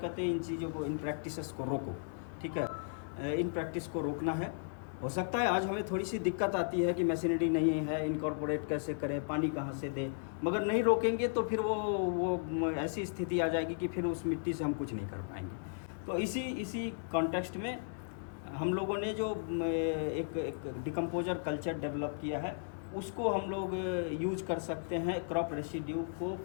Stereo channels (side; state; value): right; silent; digital silence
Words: हैं इन चीज़ों को, इन प्रैक्टिसेस को रोको। ठीक है, इन प्रैक्टिस को रोकना है। हो सकता है आज हमें थोड़ी सी दिक्कत आती है कि मशीनरी नहीं है, इनकॉर्पोरेट कैसे करें, पानी कहाँ से दें, मगर नहीं रोकेंगे तो फिर वो ऐसी स्थिति आ जाएगी कि फिर उस मिट्टी से हम कुछ नहीं कर पाएंगे। तो इसी कॉन्टेक्स्ट में हम लोगों ने जो एक डिकम्पोजर कल्चर डेवलप किया है, उसको हम लोग यूज कर सकते हैं क्रॉप रेसिड्यू को